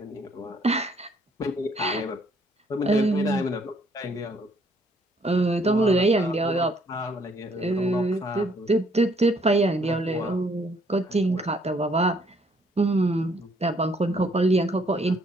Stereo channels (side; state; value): both; normal; correlation 0.65